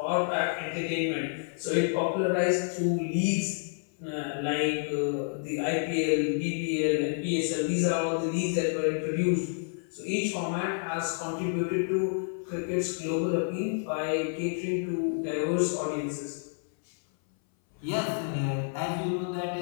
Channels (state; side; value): silent; right; 58 dB below the other